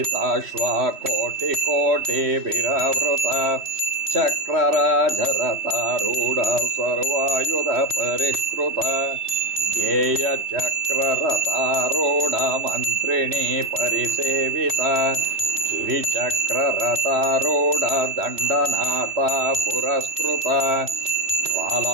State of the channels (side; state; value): left; late; 3.1 ms